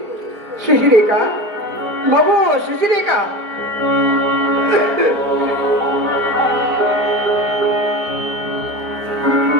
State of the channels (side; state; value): left; late; 4.5 ms